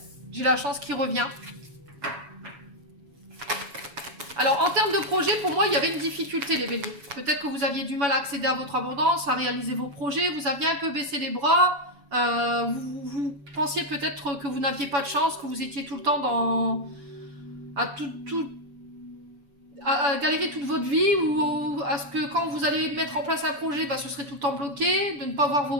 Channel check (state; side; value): late; left; 7.2 ms